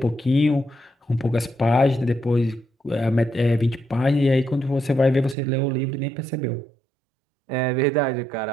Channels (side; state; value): left; drops out; at 5.4 s